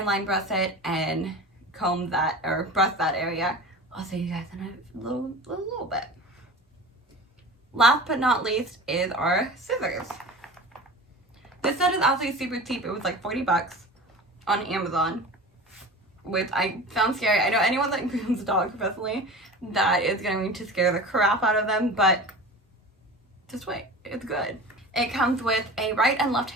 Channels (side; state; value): both; normal; correlation 0.34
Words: line breast it and comb that, or breast that area. I'll show you guys in a little bit. Last but not least is our scissors. This set is absolutely super cheap. It was like 40 bucks on Amazon, which I found scary. I know anyone that grooms a dog professionally, that is going to scare the crap out of them, but just wait, it's good. It comes with a right and